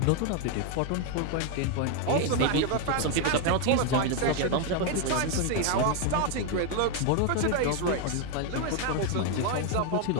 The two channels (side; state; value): both; different; correlation 0.01